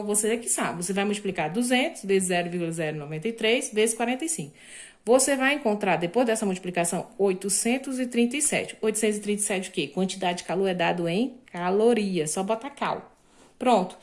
você é que sabe. Você vai multiplicar 200 vezes 0,093 vezes 45. Você vai encontrar, depois dessa multiplicação, 837. 837 o quê? Quantidade de calor é dado em calorias, só bota cal. Pronto,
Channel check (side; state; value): both; identical; correlation 1.00